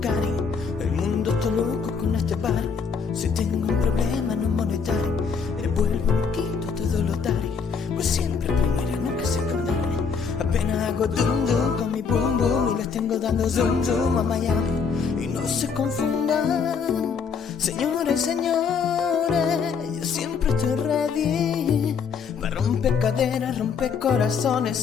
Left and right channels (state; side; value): quieter; right; 5.9 dB